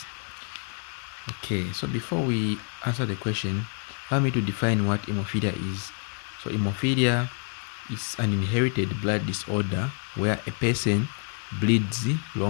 Okay, so before we answer the question, allow me to define what hemophilia is. So hemophilia is an inherited blood disorder where a person bleeds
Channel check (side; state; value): right; quieter; 39.6 dB